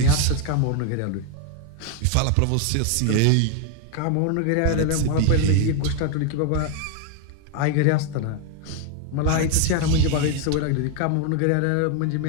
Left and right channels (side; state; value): both; different; correlation 0.00